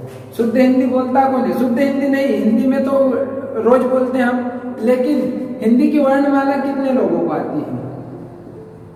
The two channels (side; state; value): both; identical; correlation 1.00